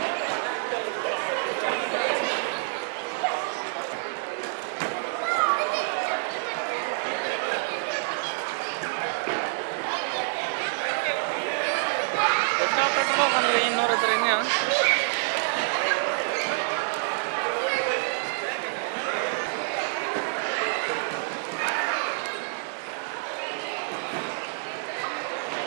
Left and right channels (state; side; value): silent; left; digital silence